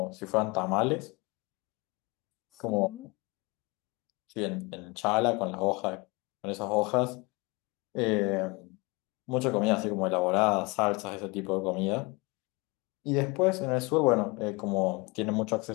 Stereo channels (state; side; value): quieter; right; 26.2 dB